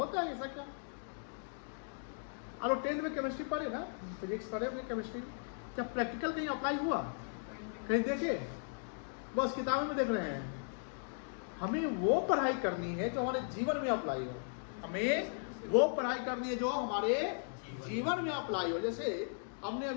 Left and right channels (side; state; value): right; silent; digital silence